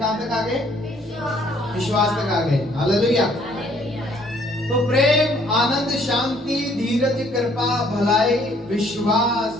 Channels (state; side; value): normal; both; correlation 0.63